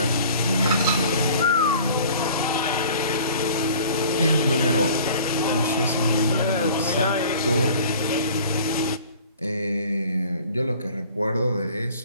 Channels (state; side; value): inverted; both; correlation -0.48